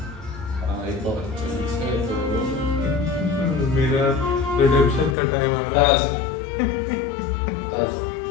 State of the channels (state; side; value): drops out; right; at 5.2 s